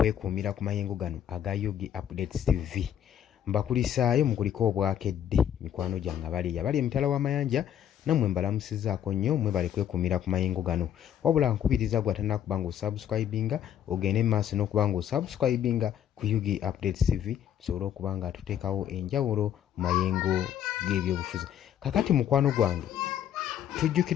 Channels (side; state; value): right; quieter; 10.0 dB